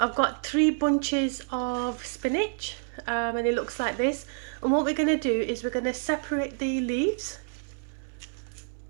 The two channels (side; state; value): left; silent; 59 dB below the other